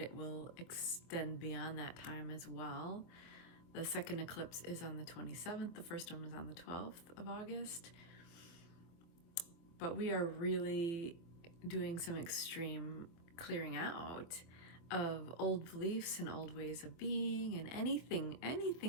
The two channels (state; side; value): late; right; 24 ms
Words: it will extend beyond that time as well. The second eclipse is on the 27th, the first one was on the 12th of August. But we are really doing some extreme clearing out of old beliefs and old ways of being and anything